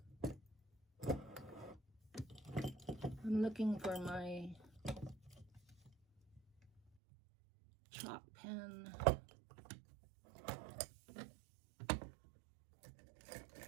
I'm looking for my chalk pen.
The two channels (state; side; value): drops out; left; at 6.8 s